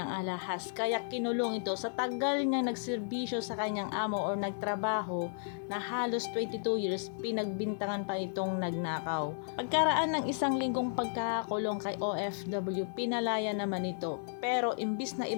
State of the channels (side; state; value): right; silent; digital silence